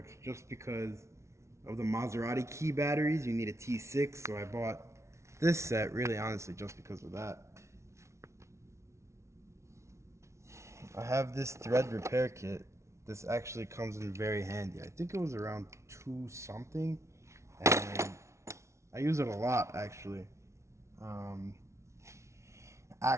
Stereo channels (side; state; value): left; late; 0.13 ms